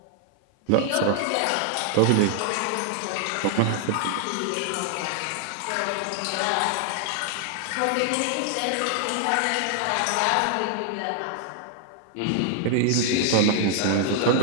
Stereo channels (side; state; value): both; different; correlation 0.00